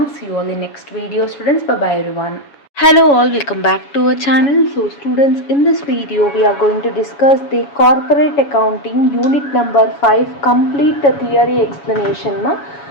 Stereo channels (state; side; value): late; right; 7.1 ms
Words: See you all in next video, students. Bye bye everyone. Hello all, welcome back to our channel. So students, in this video we are going to discuss the corporate accounting unit number 5 complete theory explanation.